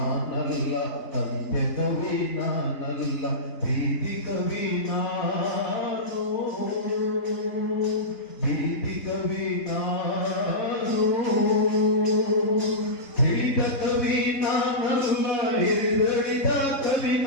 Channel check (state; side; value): late; right; 3.7 ms